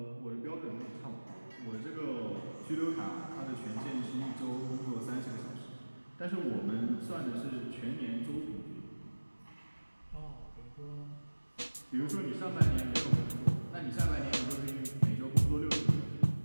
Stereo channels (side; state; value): both; inverted; correlation -1.00